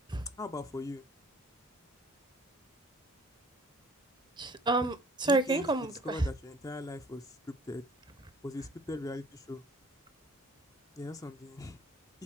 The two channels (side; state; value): both; normal; correlation 0.54